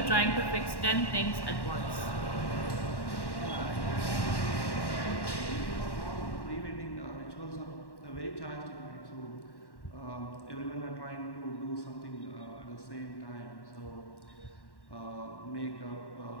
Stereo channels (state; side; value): late; right; 1.1 ms